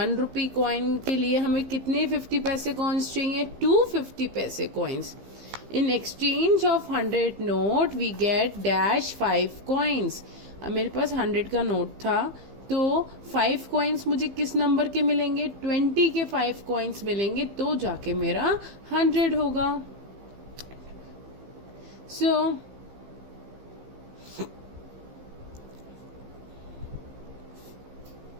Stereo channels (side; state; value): left; late; 15 ms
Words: rupee coin के लिए हमें कितने 50 पैसे coins चाहिए? 250 पैसे coins. In exchange of 100 note we get dash 5 coins. अब मेरे पास 100 का नोट था, तो 5 coins मुझे किस नंबर के मिलेंगे? 20 के 5 coins मिलेंगे, तो जाके मेरा 100 होगा. So